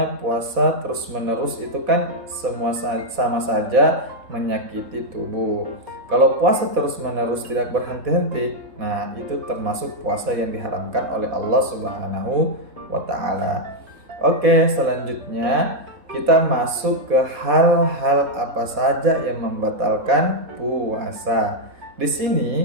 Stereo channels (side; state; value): left; late; 4.2 ms